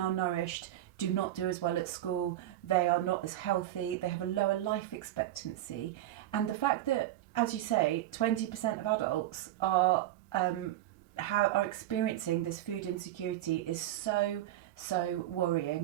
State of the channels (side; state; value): left; quieter; 13.6 dB